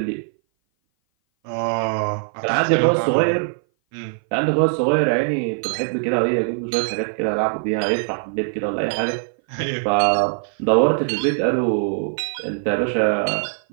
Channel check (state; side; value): silent; left; 58 dB below the other